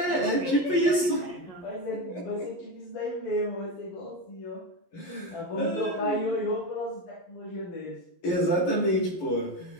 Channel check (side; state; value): right; late; 11 ms